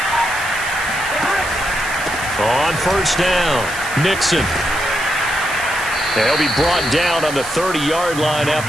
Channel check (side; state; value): right; noise; hiss, 11 dB below the sound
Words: On 1st down, Mixon. They'll be brought down on the 30-yard line